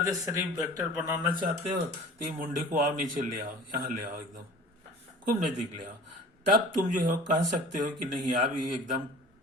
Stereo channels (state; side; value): normal; both; correlation 0.43